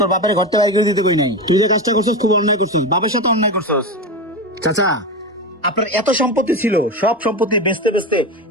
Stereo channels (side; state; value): both; normal; correlation 0.19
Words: বাপের ঘর থেকে বাইর করে দিতে কই নাই। তুই যে কাজটা করছিস খুব অন্যায় করছিস, বাপের সাথে অন্যায় করছিস। চাচা, আপনার এত সম্পত্তি ছিল, সব সম্পত্তি বেচতে বেচতে